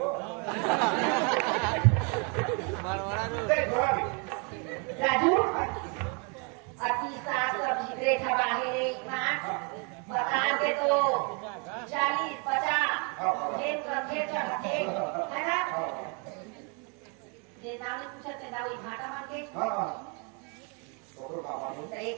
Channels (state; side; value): quieter; left; 35.5 dB